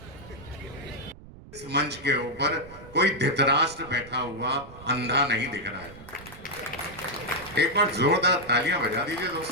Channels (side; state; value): right; noise; rumble, 18 dB below the sound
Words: इस मंच के ऊपर कोई धृतराष्ट्र बैठा हुआ अंधा नहीं दिख रहा है। एक बार जोरदार तालियां बजा दीजिए